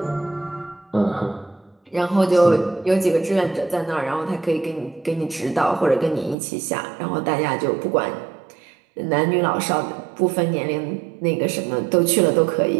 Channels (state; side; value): drops out; left; at 6.4 s